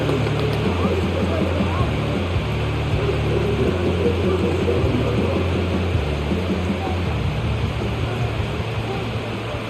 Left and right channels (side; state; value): both; identical; correlation 1.00